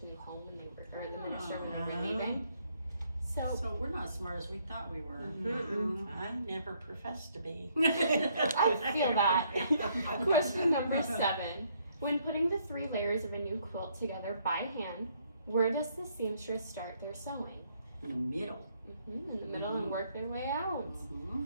new home when they were, or the minister when they were leaving. So we're not as smart as we thought we were. I never professed to be. I feel that. Question number 7. When putting the 3 layers of a new quilt together by hand, where does the seamstress start their sewing? In the middle. In the middle and work their way out. Mm-hmm.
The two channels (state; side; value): inverted; both; correlation -0.69